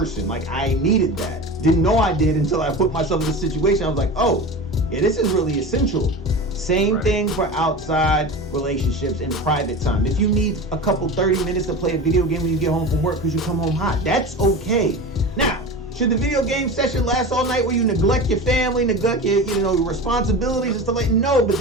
Like, I needed that. Didn't know I did until I put myself in this situation. I was like, oh, yeah, this is really essential. Same thing for outside relationships and private time. If you need a couple 30 minutes to play a video game when you get home from work because you come home hot, that's okay. Now, should the video game session last all night where you neglect your family, neglect your, your responsibilities and stuff like that? No, but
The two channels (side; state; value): both; normal; correlation 0.30